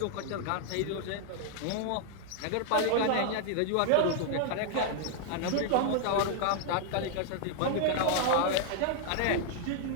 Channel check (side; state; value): both; different; correlation 0.00